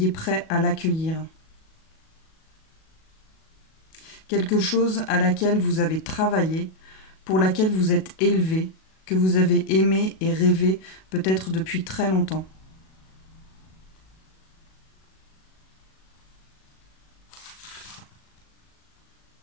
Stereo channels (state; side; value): late; right; 37 ms